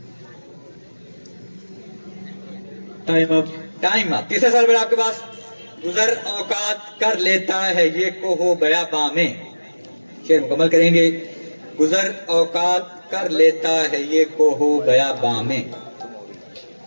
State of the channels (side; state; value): both; inverted; correlation -1.00